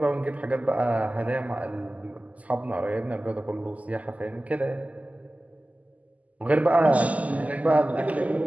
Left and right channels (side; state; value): left; late; 0.072 ms